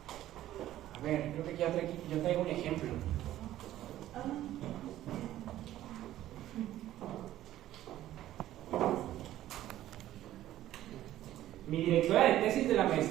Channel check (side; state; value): left; quieter; 13.6 dB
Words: A ver, creo que yo traigo un ejemplo. Mi directora de tesis de la